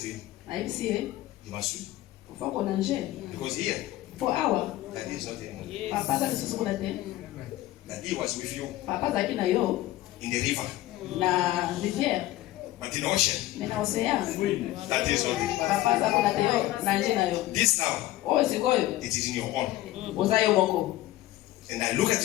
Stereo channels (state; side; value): quieter; right; 15.9 dB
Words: to him, Na hivi si you must swim ufako na nje. because here For hour. that is not anymore. Daddy was with you in the river. But in the ocean, that is not it. This now, it is in your own. And I look